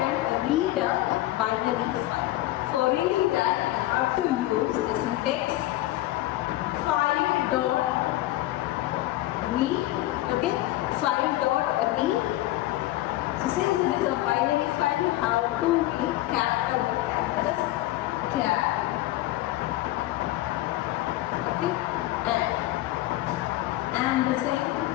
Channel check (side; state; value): right; quieter; 16.4 dB